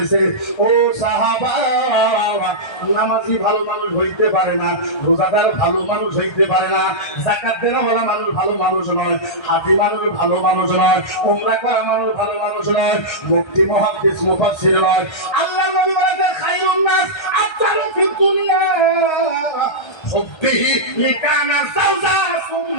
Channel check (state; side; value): late; right; 1.3 ms